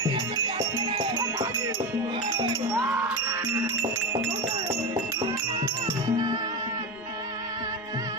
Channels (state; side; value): noise; right; rumble, 28 dB below the sound